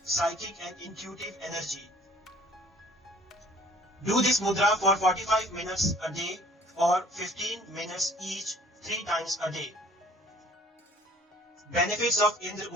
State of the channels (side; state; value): both; normal; correlation 0.54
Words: psychic and intuitive energy. Do this mudra for 45 minutes a day or 15 minutes each 3 times a day. Benefits of Indra